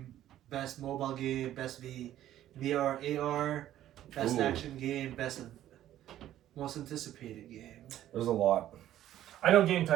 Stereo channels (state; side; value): quieter; left; 12.6 dB